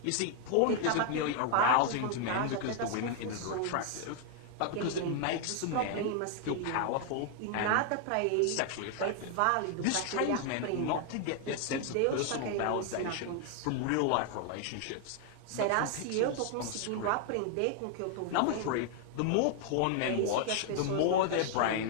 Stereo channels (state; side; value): different; both; correlation 0.00